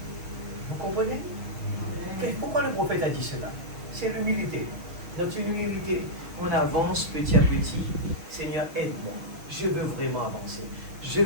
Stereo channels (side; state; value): left; late; 6.3 ms